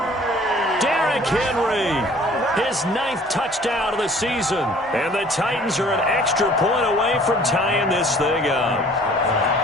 Derrick Henry. His 9th touchdown of the season. And the Titans are an extra point away from tying this thing up.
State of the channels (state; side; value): normal; both; correlation 0.53